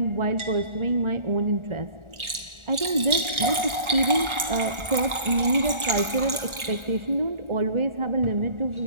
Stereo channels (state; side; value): late; left; 1.4 ms